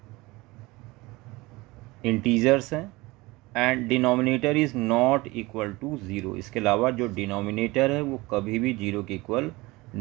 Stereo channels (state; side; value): quieter; left; 21.8 dB